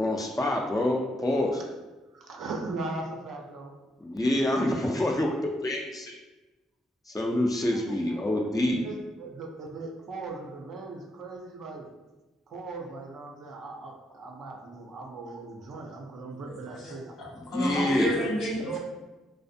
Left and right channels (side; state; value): both; normal; correlation 0.79